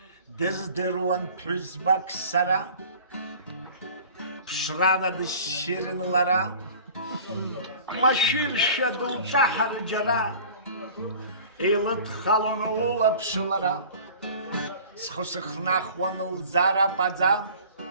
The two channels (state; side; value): inverted; both; correlation -0.45